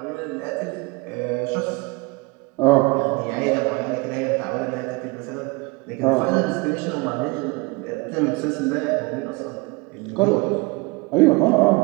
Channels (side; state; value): left; quieter; 25.8 dB